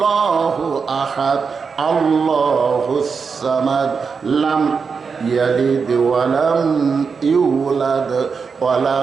আহাদ আল্লাহুস সামাদ লাম ইয়ালিদ ওয়া লাম ইউলাদ ওয়া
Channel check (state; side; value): quieter; left; 5.5 dB